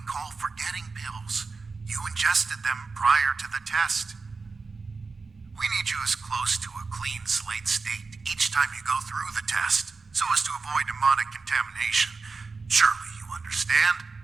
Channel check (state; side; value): quieter; left; 4.3 dB